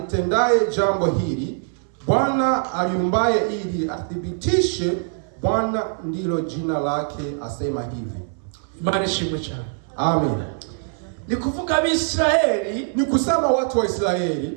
jambo hili, Bwana aliumbaye ili athibitishe, Bwana ndilo jina lake, asema hivi. Imani ishimwe cyane. Amen. Ni kuvuga Abisirayeli, ni kusema watu wa Israeli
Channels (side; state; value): left; silent; 61 dB below the other